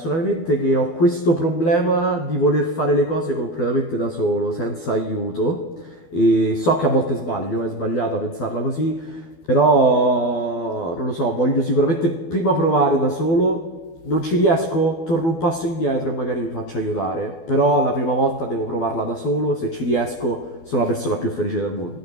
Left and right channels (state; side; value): late; right; 12 ms